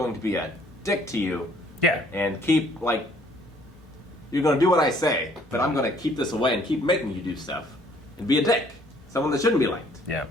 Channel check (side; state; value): both; normal; correlation 0.61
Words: to be a dick to you Yeah. and keep, like, you're going to do what I say, but I'm going to keep this away and keep making you do stuff and be a dick. Someone that shouldn't be liked. Yeah.